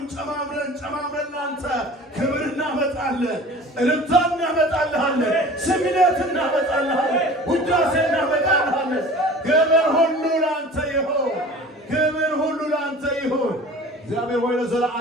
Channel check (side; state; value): both; normal; correlation 0.42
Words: ጨማምረን ላንተ ክብር እናመጣለን፣ እልልታ እናመጣልሃለን፣ ስግደት እናመጣልሃለን፣ ውዳሴ እናመጣልሃለን። ክብር ሁሉ ላንተ ይሁን፣ ክብር ሁሉ ላንተ ይሁን። እግዚአብሔር ሆይ